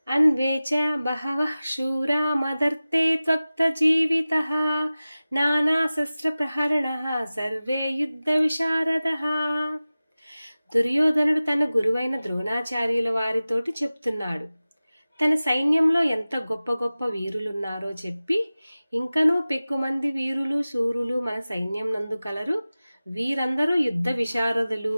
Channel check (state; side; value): inverted; both; correlation -0.97